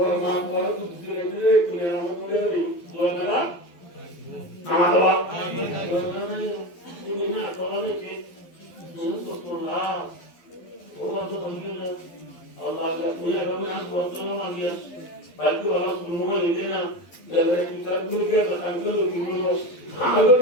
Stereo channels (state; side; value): late; right; 12 ms